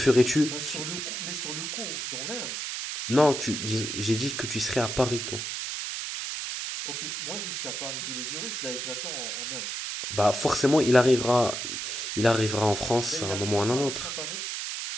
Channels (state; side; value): noise; right; hiss, 4 dB below the sound